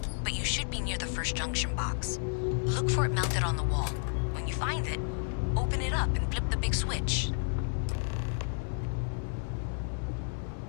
but you should be near the first junction box. Look for it mounted on the wall. When you find it, open it up and flip the big switch.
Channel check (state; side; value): silent; right; 55 dB below the other